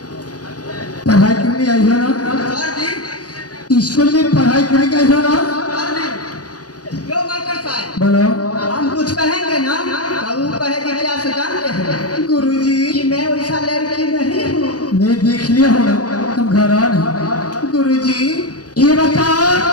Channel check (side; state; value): right; late; 0.68 ms